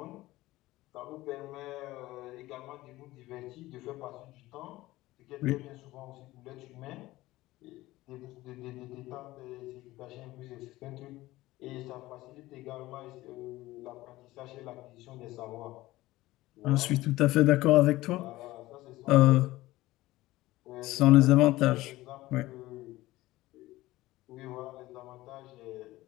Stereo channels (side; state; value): right; quieter; 17.8 dB